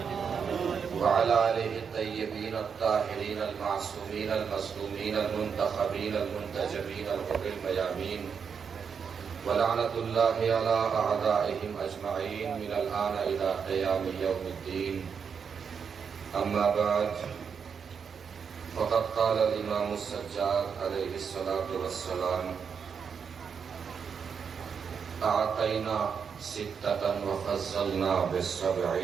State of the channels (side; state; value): left; quieter; 6.5 dB